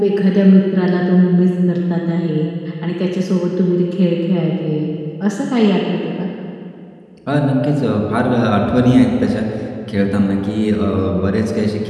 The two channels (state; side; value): identical; both; correlation 1.00